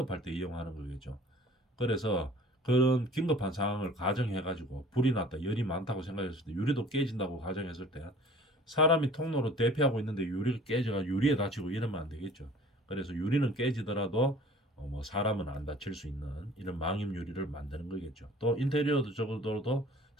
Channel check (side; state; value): both; normal; correlation 0.48